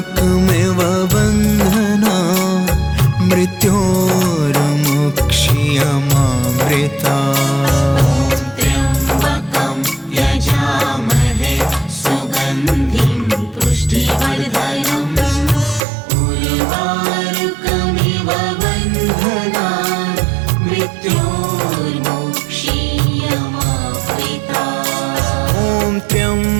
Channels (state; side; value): drops out; left; at 15.9 s